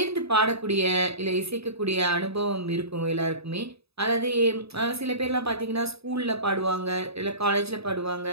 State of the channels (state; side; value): late; left; 0.78 ms